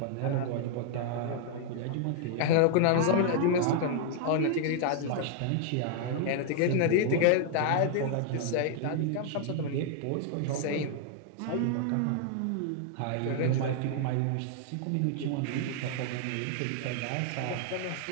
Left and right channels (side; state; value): both; different; correlation 0.00